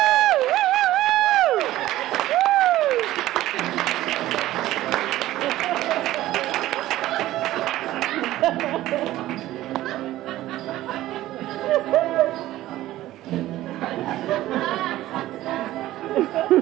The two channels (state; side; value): quieter; left; 15.2 dB